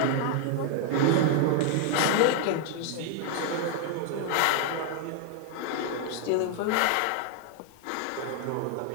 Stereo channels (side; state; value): both; different; correlation 0.00